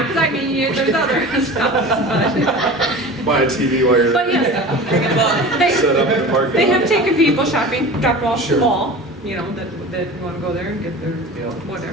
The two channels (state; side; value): normal; both; correlation 0.35